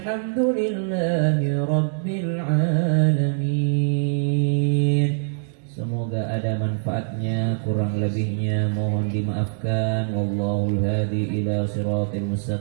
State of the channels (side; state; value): left; silent; digital silence